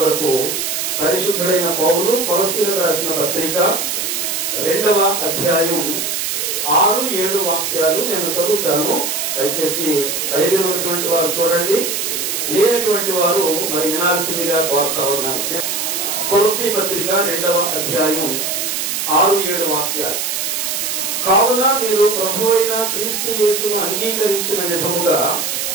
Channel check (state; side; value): noise; right; hiss, 1 dB below the sound